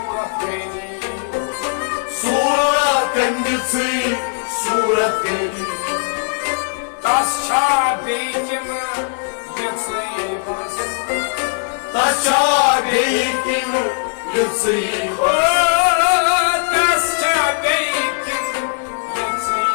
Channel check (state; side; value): silent; right; digital silence